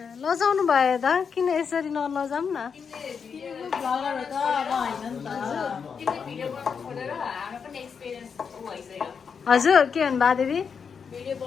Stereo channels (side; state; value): right; quieter; 6.3 dB